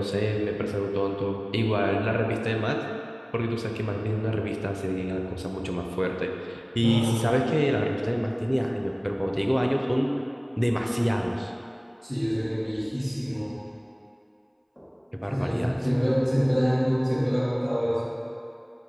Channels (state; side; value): identical; both; correlation 1.00